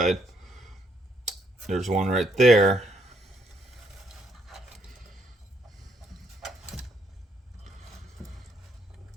there's one right there.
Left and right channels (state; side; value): normal; both; correlation 0.72